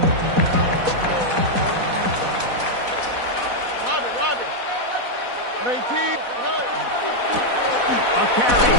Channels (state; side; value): late; left; 4.1 ms